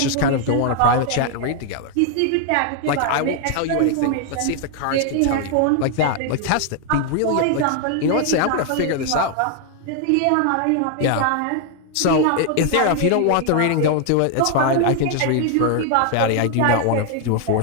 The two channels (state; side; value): different; both; correlation 0.00